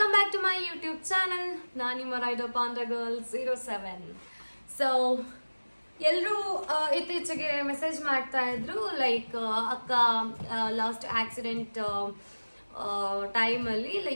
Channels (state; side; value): inverted; both; correlation -1.00